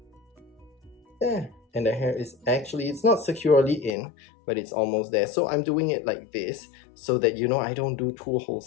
There. and the hair is actually, it's not securely in, but it's almost there. So I'm doing it like this so that, you know, I don't do two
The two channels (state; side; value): drops out; right; at 4.0 s